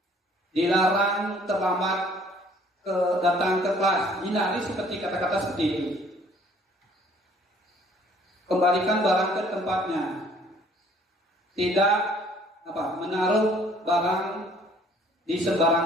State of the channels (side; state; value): both; normal; correlation 0.58